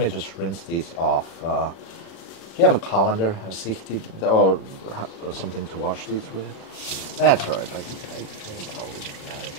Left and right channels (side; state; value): right; late; 37 ms